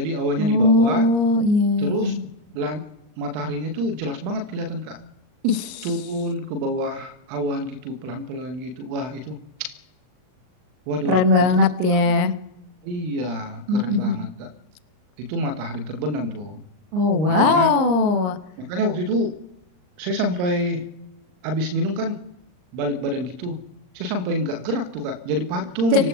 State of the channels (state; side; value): late; left; 39 ms